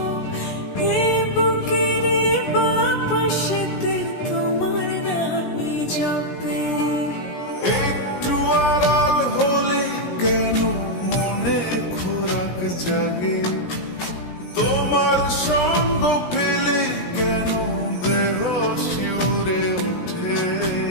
এ বুকের বাপাশেতে তোমার নামই জপে। একটু আড়াল হলে কেন মনে খোরাক জাগে, তোমার সঙ্গ পেলে কেন দেহ শিউরে ওঠে।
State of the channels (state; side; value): late; right; 17 ms